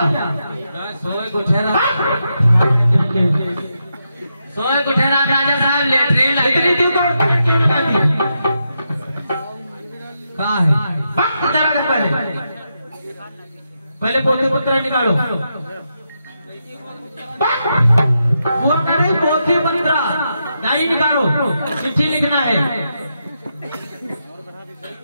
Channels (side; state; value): both; inverted; correlation -0.84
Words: सोए गुठेरा राजा साहब लेटरिन इतनी दूर कहाँ है? पहले पोते पुत्र निकालो। वो करे पोते पुत्र नहीं निकालो, चिट्ठी लिखना है।